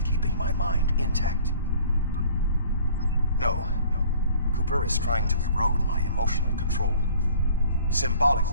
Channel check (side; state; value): both; inverted; correlation -0.52